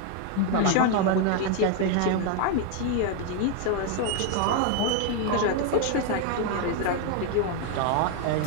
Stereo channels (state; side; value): different; both; correlation 0.01